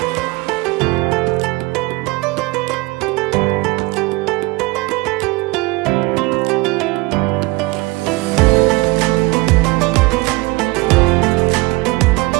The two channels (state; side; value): quieter; left; 23.4 dB